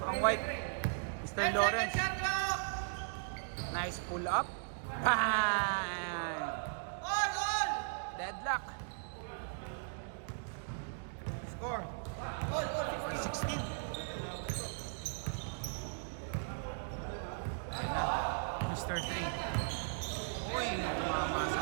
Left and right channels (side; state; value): left; silent; digital silence